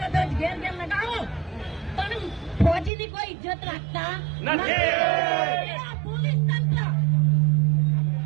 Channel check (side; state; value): left; drops out; at 2.9 s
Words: ઘેર ઘેર લગાવો, પણ ફોજીની કોઈ ઇજ્જત રાખતા નથી. પોલીસ તંત્ર